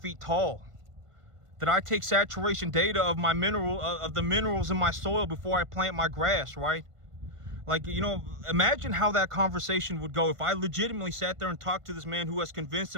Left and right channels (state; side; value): late; left; 1.5 ms